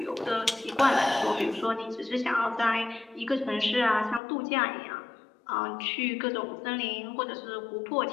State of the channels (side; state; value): right; drops out; at 4.2 s